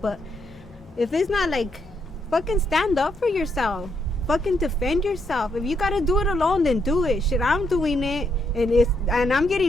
if it's not like, fucking stand up for yourself. Fucking defend yourself. If you gotta do it alone, then do it. Shit, I'm doing it, and I'm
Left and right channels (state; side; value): normal; both; correlation 0.77